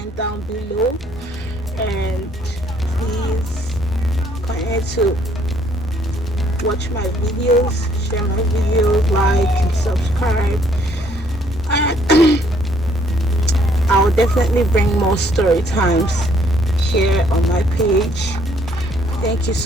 down below, and please continue to watch my videos, share my videos, like and subscribe, and I will definitely bring more story times here on my page. Thank you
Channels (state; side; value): normal; both; correlation 0.65